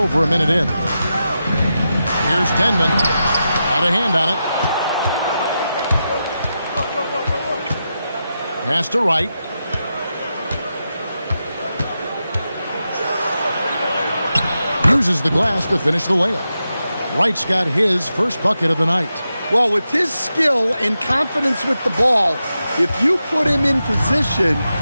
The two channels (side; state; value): both; inverted; correlation -0.89